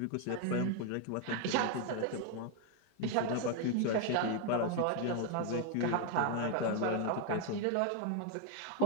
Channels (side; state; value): both; different; correlation 0.00